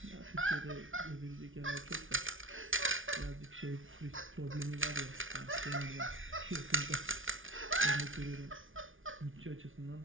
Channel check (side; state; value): left; late; 0.57 ms